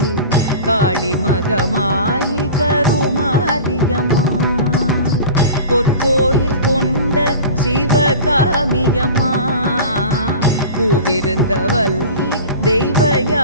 காளி மகமாயி கருமாரியம்மா. பொற்கோயில் கொண்ட சிவகாமியம்மா, பூவிருந்தவல்லி தெய்வ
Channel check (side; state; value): both; inverted; correlation -0.37